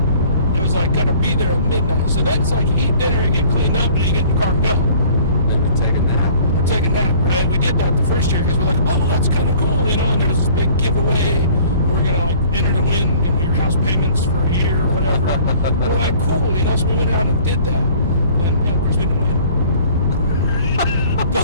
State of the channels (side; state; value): both; inverted; correlation -0.52